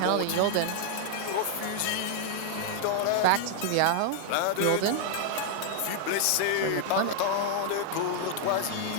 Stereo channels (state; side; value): different; both; correlation 0.00